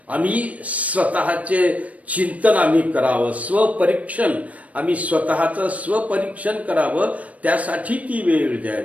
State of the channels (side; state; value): left; late; 0.068 ms